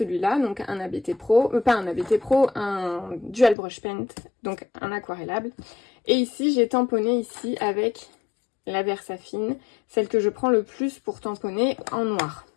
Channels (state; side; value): drops out; right; at 3.6 s